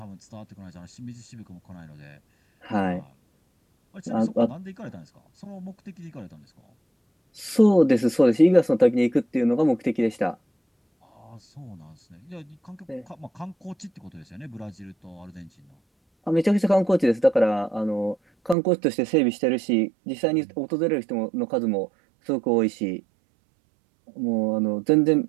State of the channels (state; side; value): drops out; left; at 18.6 s